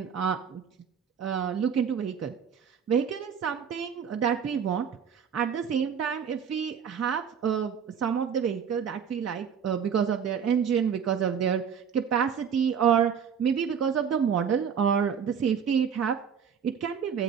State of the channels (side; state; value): left; quieter; 7.3 dB